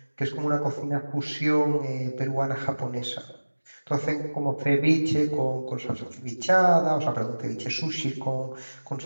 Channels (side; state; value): both; inverted; correlation -1.00